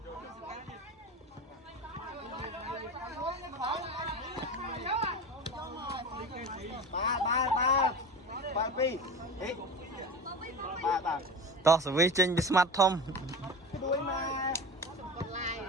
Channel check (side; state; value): both; normal; correlation 0.30